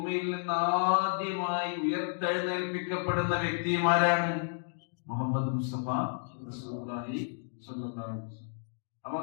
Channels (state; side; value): silent; right; digital silence